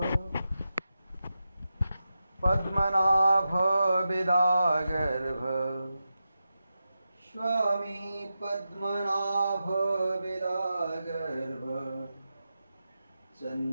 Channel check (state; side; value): inverted; both; correlation -0.90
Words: पद्मनाभ विदागर्भ स्वामी पद्मनाभ विदागर्भ